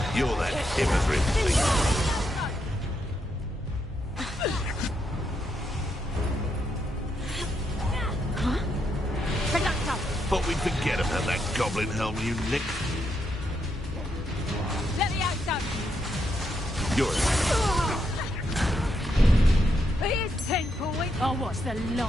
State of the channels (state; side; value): normal; both; correlation 0.80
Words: You're that hypocrite thing. Thought we'd forget about that goblin helm you nicked. You're Here's 10 points. I'll watch the